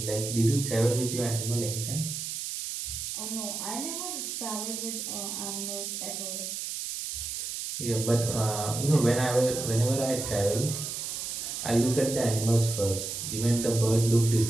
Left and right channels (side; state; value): right; noise; hiss, 5 dB below the sound